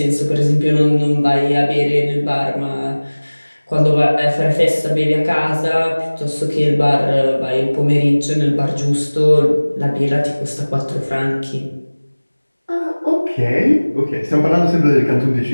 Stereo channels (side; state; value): both; inverted; correlation -1.00